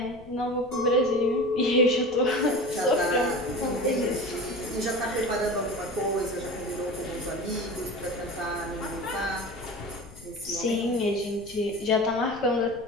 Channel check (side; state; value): left; noise; rumble, 20 dB below the sound